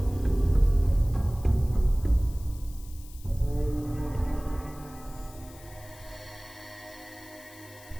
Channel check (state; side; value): noise; left; hiss, 21 dB below the sound